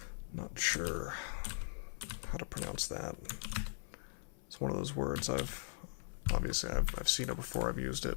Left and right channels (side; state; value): right; silent; 51 dB below the other